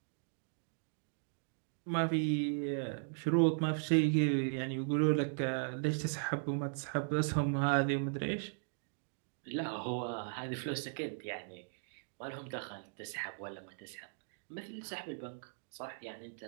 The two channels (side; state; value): left; silent; digital silence